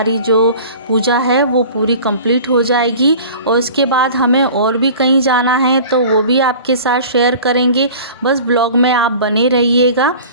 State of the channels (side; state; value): both; inverted; correlation -0.42